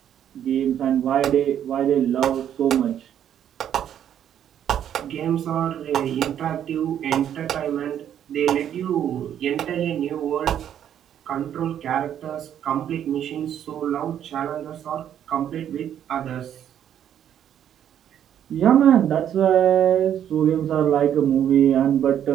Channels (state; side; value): quieter; left; 9.9 dB